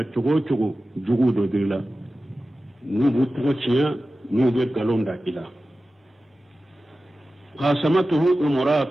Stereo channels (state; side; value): normal; both; correlation 0.95